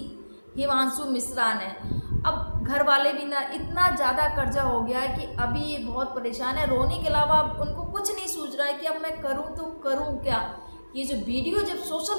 हिमांशु मिश्रा ने। अब घर वाले भी ना इतना ज़्यादा कर्जा हो गया है कि अभी ये बहुत परेशान है, रोने के अलावा अब उनको कुछ नहीं सूझ रहा है कि अब मैं करूँ तो करूँ क्या। ये जो वीडियो जब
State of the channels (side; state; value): both; inverted; correlation -1.00